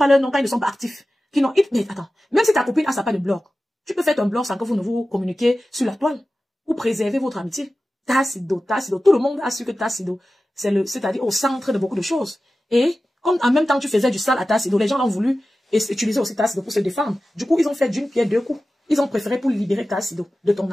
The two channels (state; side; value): normal; both; correlation 0.95